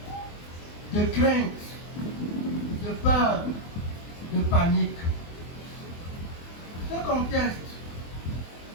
de crainte, de peur, de panique. Ce contexte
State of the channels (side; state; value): right; late; 24 ms